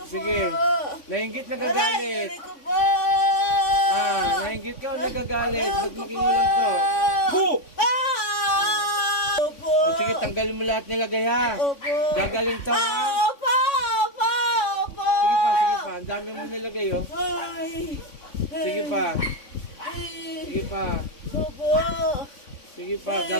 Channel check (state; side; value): late; right; 3.5 ms